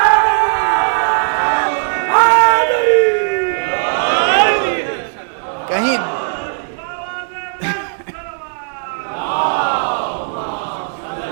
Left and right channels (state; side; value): silent; left; 67 dB below the other